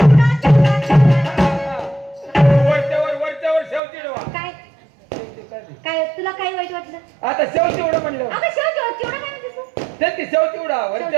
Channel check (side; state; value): left; drops out; at 3.8 s